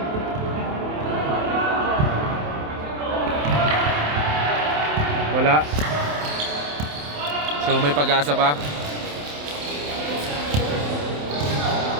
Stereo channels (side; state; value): left; late; 27 ms